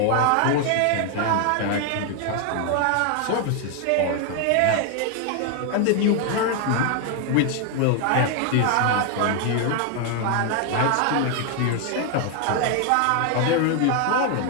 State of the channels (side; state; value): both; different; correlation 0.00